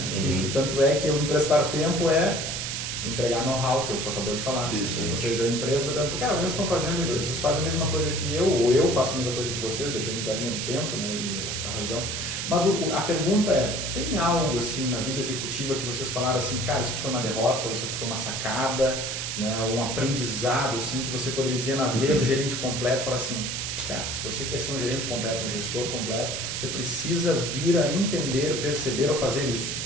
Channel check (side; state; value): right; noise; hiss, 3 dB below the sound